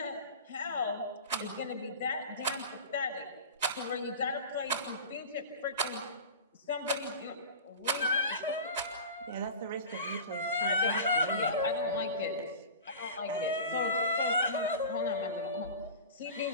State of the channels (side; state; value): both; inverted; correlation -0.33